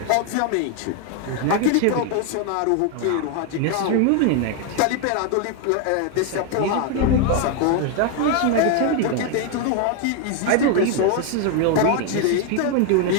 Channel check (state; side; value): different; both; correlation 0.01